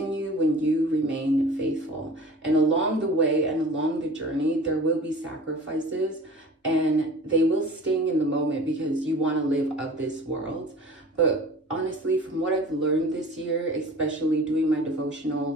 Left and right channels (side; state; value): both; normal; correlation 0.42